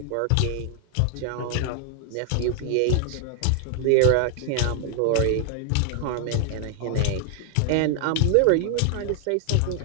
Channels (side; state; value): both; different; correlation 0.00